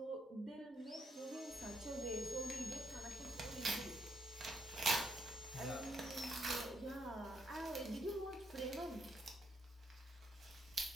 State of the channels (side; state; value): both; normal; correlation 0.76